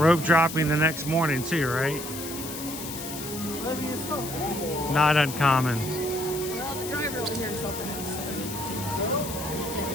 dropping the next morning too, right? Not uncommon. Well, the driver over here is helping us.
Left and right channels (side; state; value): left; noise; hiss, 9 dB below the sound